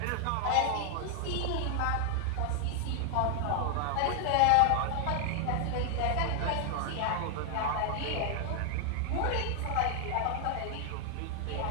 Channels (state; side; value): different; both; correlation 0.00